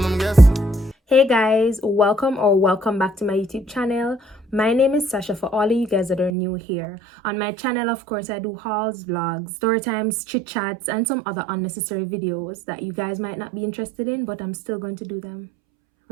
I'm guessing. Hey guys, welcome back to my YouTube channel. My name is Sasha. For all of you guys that are new here on my channel, of course I do hauls, vlogs, story times, chit chats, and some other unnecessary videos that you guys might not be interested in, but I'm still going to do them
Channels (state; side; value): drops out; left; at 6.3 s